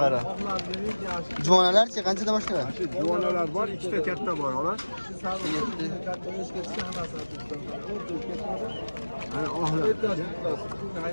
Juvonalarchi qanchadan boshlanadi? Juvonalar bor, ikkita katta bor, xolos. Ana ohlar.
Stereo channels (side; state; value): both; inverted; correlation -1.00